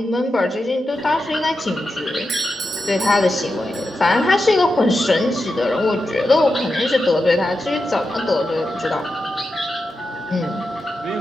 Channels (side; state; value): both; normal; correlation 0.89